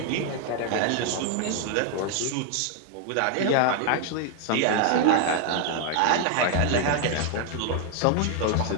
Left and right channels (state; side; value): different; both; correlation 0.00